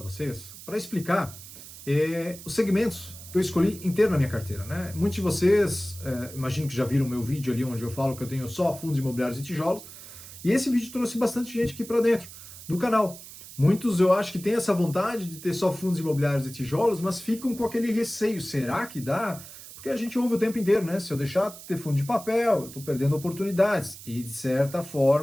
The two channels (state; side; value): noise; right; hiss, 15 dB below the sound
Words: vocês, para explicar os segmentos que eu escolhi inteiro na minha carteira, né? Muitos de vocês, imagino que já viram o meu vídeo ali onde eu falo que eu tenho só fundos imobiliários e tijolos, e esse vídeo trouxe bastante gente aqui para dentro do canal. Muitos eu acho que têm essa vontade de ter só fundos imobiliários e tijolos, mas ficam com aquele receio, será que dá? Porque a gente ouve o tempo inteiro, né? Se eu deixar de ter fundo de papel, eu estou perdendo oportunidades. E de certa